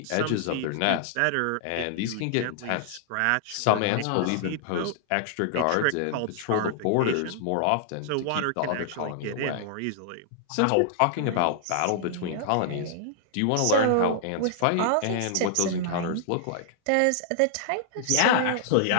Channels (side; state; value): both; different; correlation -0.01